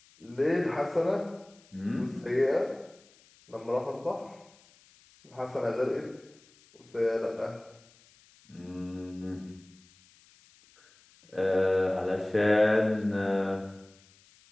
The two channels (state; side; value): noise; left; hiss, 28 dB below the sound